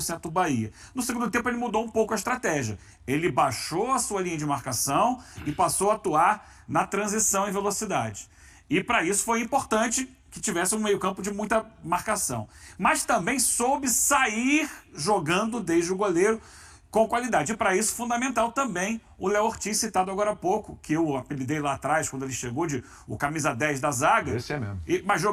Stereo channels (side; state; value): both; identical; correlation 1.00